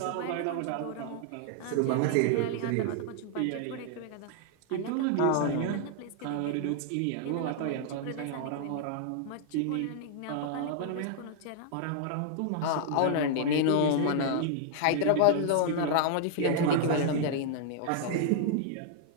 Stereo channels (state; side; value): different; both; correlation -0.01